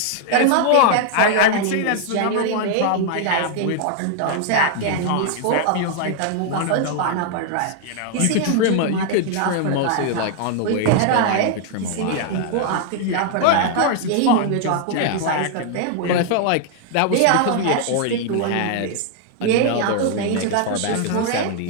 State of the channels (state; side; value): different; both; correlation 0.00